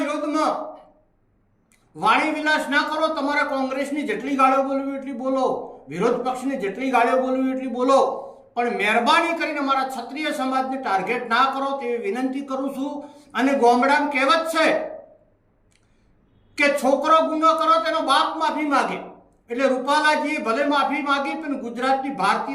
વાણી વિલાસ ના કરો. તમારે કોંગ્રેસની જેટલી ગાળીઓ બોલવી એટલી બોલો, વિરોધ પક્ષની જેટલી ગાળીઓ બોલવી એટલી બોલો, પણ મહેરબાની કરીને અમારા ક્ષત્રિય સમાજને ટાર્ગેટ ના કરો તેવી વિનંતી કરું છું. અને ગામડામાં કહેવત છે કે છોકરો ગુનો કરો તેનો બાપ માફી માગે, એટલે રૂપાલાજીએ ભલે માફી માગી પણ ગુજરાતની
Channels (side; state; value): both; identical; correlation 1.00